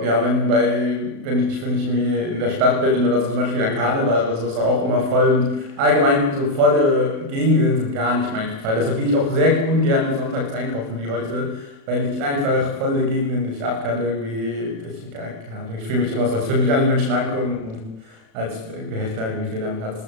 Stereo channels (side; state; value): left; late; 36 ms